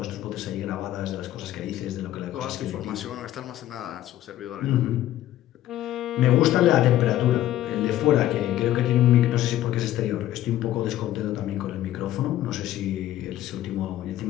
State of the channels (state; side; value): quieter; right; 13.5 dB